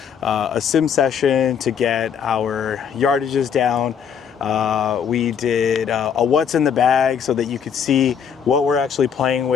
a sim session to get our yardages down. We did a what's in the bag so that you could see what we're actually playing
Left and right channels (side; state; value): right; quieter; 7.5 dB